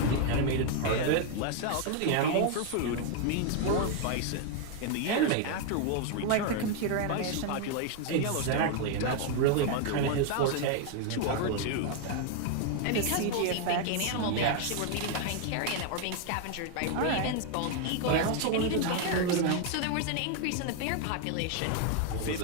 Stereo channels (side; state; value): both; different; correlation 0.00